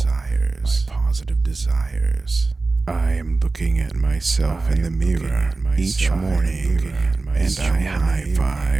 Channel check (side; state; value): left; quieter; 3.6 dB